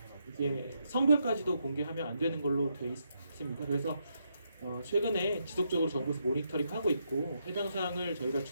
이제 성별까지도 공개하면 안 되는 걸로 되어 있습니다. 그래서 최근에 지속적으로 정부에서 모니터링하고 있고 해당 사항을 저희가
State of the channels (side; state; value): both; inverted; correlation -0.79